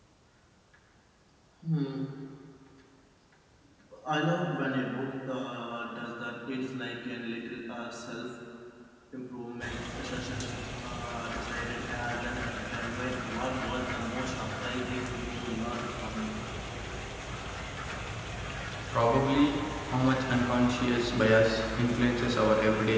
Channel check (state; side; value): identical; both; correlation 1.00